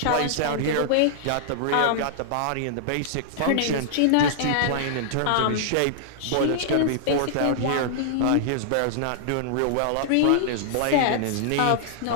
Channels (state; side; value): different; both; correlation -0.01